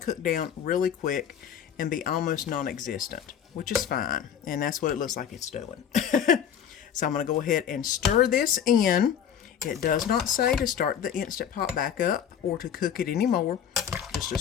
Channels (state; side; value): quieter; right; 8.7 dB